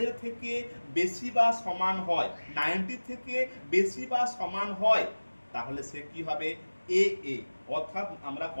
এর থেকে বেশি বা সমান হয়, 90 থেকে বেশি বা সমান হয়, তাহলে সে কি হবে? এ। অর্থাৎ আমরা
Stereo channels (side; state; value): both; inverted; correlation -1.00